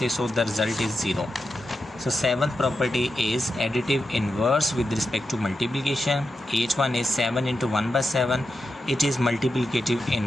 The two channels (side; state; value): both; normal; correlation 0.88